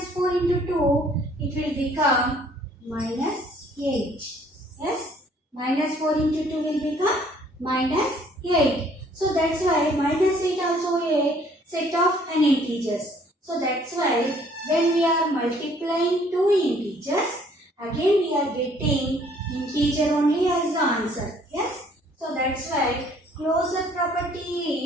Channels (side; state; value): both; normal; correlation 0.60